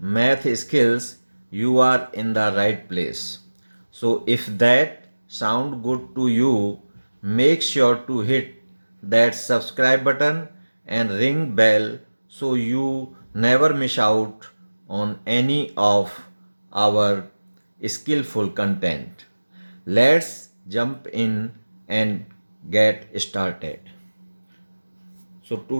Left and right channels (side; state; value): both; inverted; correlation -1.00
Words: skills, you are in the right place. So if that sound good to you, make sure to hit that subscribe button and ring bell so you never miss out on any of our skillful content. Let's jump in and get started. So